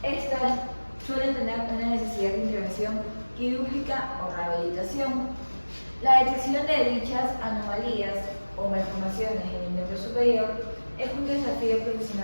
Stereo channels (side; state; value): both; inverted; correlation -1.00